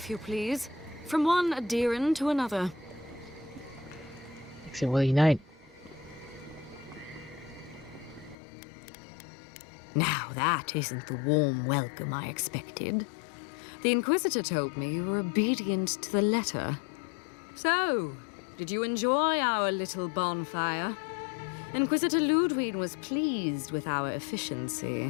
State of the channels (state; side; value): drops out; right; at 8.3 s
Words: you please. From one adherent to another. 69. Now that isn't the warm welcome I expected. The Inquisitor told me you were obedient to the letter. So, did you enjoy our little bonfire? Inquisitor Ludwig was pleased with our